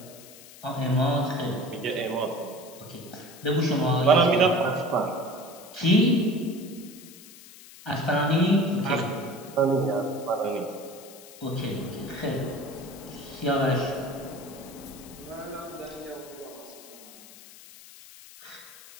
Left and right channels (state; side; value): noise; left; hiss, 19 dB below the sound